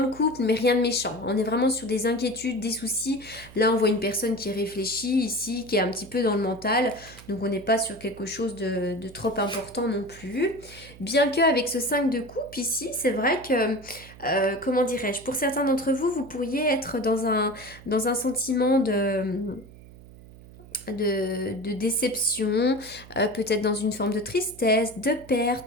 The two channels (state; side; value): noise; right; hum, 20 dB below the sound